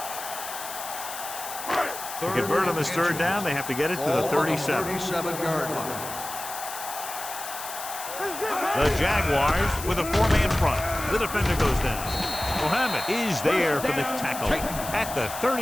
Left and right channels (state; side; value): noise; left; hiss, 9 dB below the sound